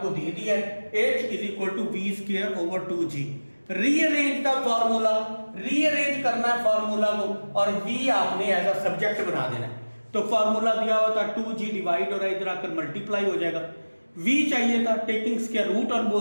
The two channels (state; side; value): inverted; both; correlation -1.00